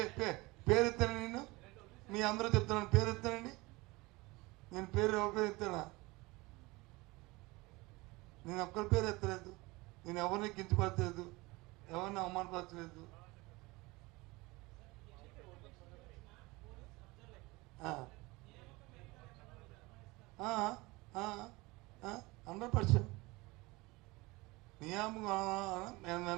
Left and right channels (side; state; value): left; quieter; 22.8 dB